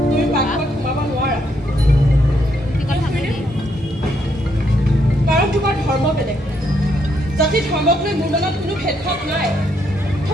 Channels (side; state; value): both; normal; correlation 0.75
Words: তুমি পাকঘৰত সোমাব নোৱাৰা কাৰণ তোমাৰ ধৰ্ম বেলেগ জাতি ধৰ্মক লৈ মোৰ মনত কোনো ভেদভাৱ নাই